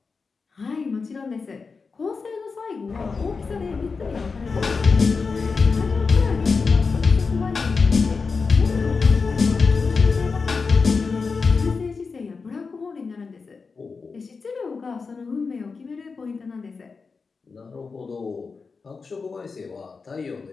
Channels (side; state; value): right; quieter; 4.7 dB